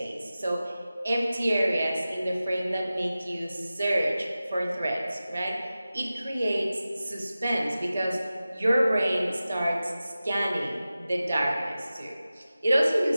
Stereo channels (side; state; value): both; inverted; correlation -0.95